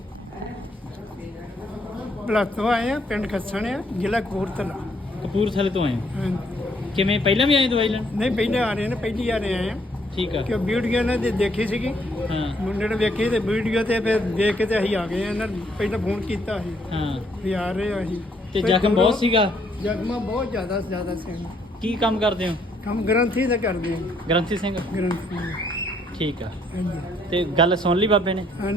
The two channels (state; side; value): normal; both; correlation 0.69